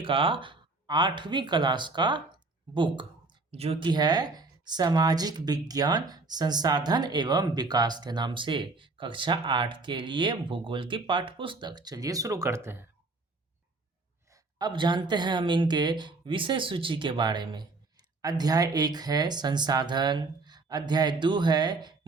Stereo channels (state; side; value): quieter; left; 3.5 dB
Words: का 8वीं क्लास का बुक, जो कि है सामाजिक विज्ञान संसाधन एवं विकास के नाम से, कक्षा 8 के लिए भूगोल की पाठ्य पुस्तक। चलिए शुरू करते हैं। अब जानते हैं हम इनके विषय सूची के बारे में। अध्याय 1 है संसाधन। अध्याय 2 है